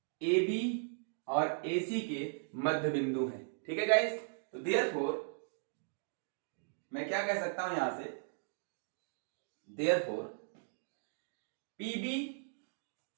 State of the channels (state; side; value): silent; left; digital silence